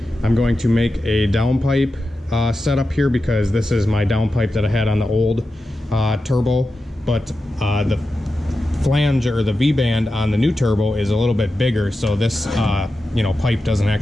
I'm going to make a downpipe setup here, because this is my downpipe that I had on the old turbo. But the flange, or the V-band on the new turbo, is a little bit bigger, so this pipe doesn't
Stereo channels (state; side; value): normal; both; correlation 0.91